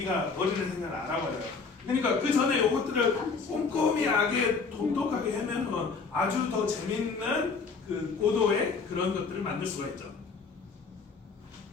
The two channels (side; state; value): right; quieter; 4.8 dB